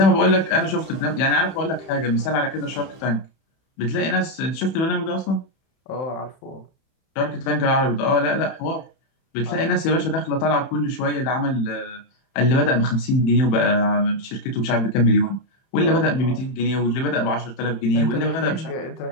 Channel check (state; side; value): late; right; 31 ms